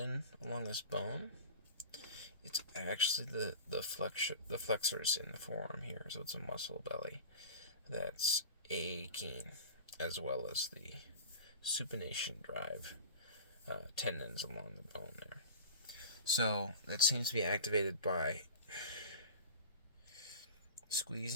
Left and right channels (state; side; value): inverted; both; correlation -0.35